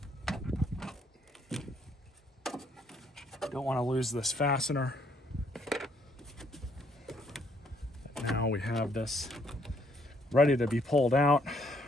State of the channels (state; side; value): normal; both; correlation 0.68